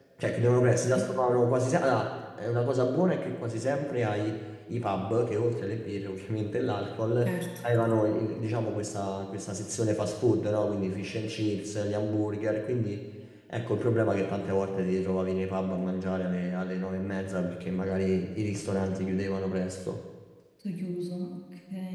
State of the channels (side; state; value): both; identical; correlation 1.00